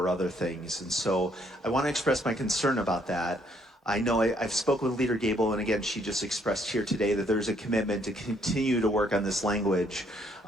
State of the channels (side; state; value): both; normal; correlation 0.68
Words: other things. And so I want to express my concern about that. I know I've spoken with Leader Gabel, and again, she just expressed here today that there's a commitment to continue to work on this language.